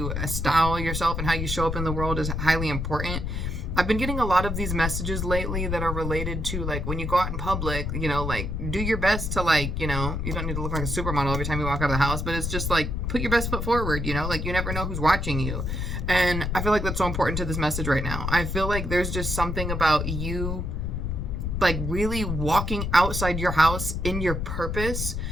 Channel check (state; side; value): noise; left; rumble, 2 dB below the sound